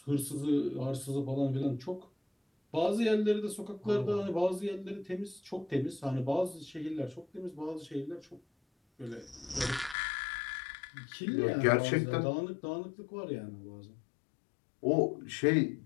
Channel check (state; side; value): drops out; right; at 10.0 s